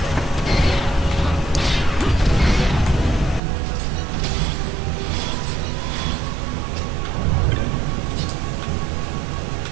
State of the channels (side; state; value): left; drops out; at 3.4 s